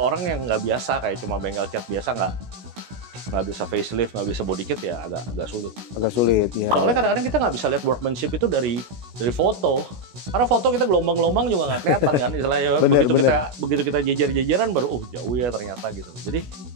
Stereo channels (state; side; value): late; left; 16 ms